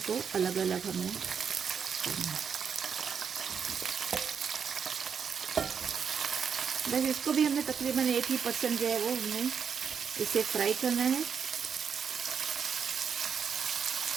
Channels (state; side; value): quieter; left; 6.9 dB